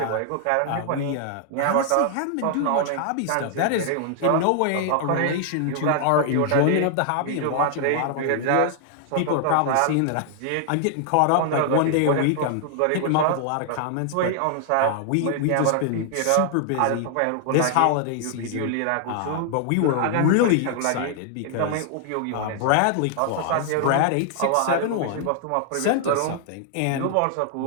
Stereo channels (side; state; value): both; different; correlation 0.00